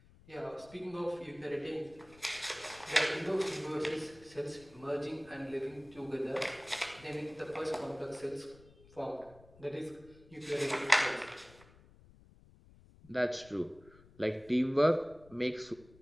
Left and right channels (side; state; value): left; noise; rumble, 24 dB below the sound